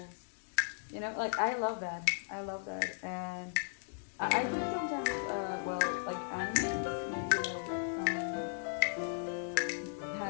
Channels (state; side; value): silent; right; digital silence